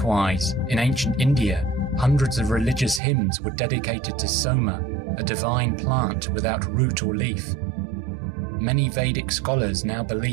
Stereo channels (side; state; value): left; drops out; at 3.0 s